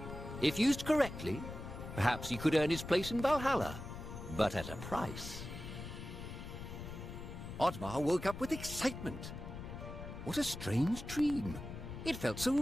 If used correctly, perhaps he could earn his place in Valhalla, but at a price. Oddmar woke up with excitement. What a strange dream. It felt so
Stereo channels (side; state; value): left; noise; rumble, 9 dB below the sound